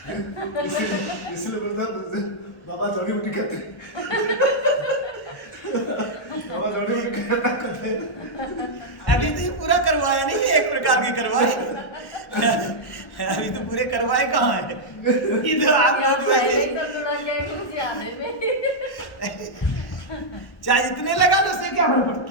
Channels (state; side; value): late; right; 1.1 ms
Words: इसलिए बोलता बाबा जड़ी बूटी खाते, बाबा जड़ी बूटी खाते। अभी तो ये पूरा करवाया नहीं है, एक प्रकार की करवाए। अभी तो पूरे करवाए कहाँ है? ये तो आप लोग वैसे चाहे जितने लगा लो उससे क्या फर्क